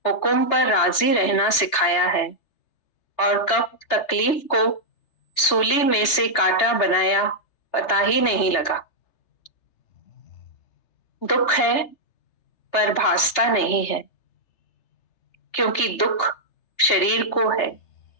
हुक्म पर राजी रहना सिखाया है। और कब तकलीफ को सूली में से कांटा बनाया पता ही नहीं लगा। दुख है पर भासता नहीं है, क्योंकि दुख शरीर को है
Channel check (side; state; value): right; late; 3.3 ms